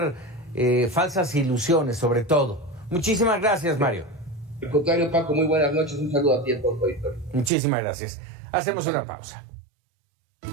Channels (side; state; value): left; drops out; at 7.5 s